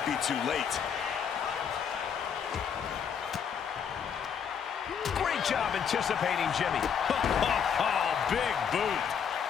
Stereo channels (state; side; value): quieter; right; 7.4 dB